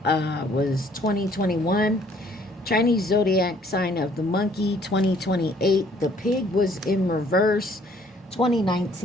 was 2021. Chinese zodiac sign of the monkey, 2028. The pig was in reverse,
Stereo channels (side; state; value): both; normal; correlation 0.61